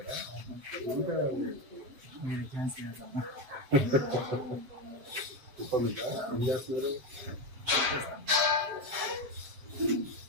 ఇంకా మీరు ఛాన్స్ చేస్తాను. కుప్పమిట ఏం చేస్తున్నారు?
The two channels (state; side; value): late; left; 7.7 ms